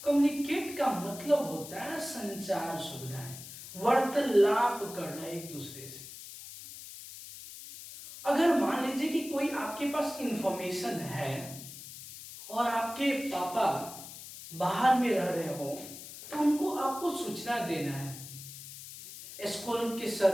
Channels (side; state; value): left; noise; hiss, 13 dB below the sound